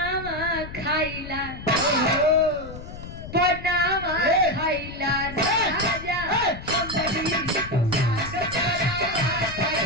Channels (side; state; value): left; noise; rumble, 12 dB below the sound